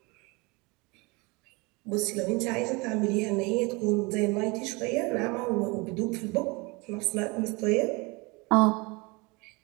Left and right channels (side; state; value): left; quieter; 26.7 dB